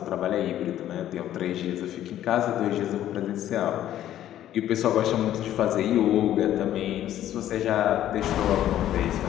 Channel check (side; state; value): right; quieter; 12.1 dB